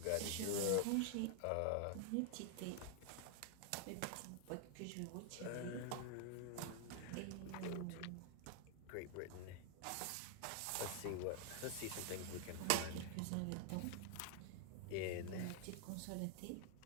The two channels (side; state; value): both; different; correlation 0.00